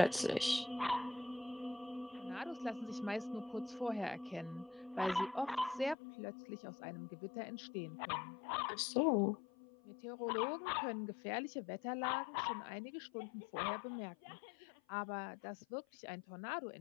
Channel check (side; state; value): right; drops out; at 6.0 s